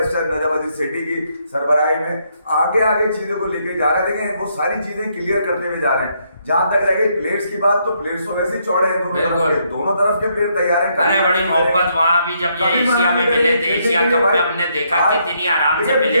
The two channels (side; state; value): both; inverted; correlation -0.74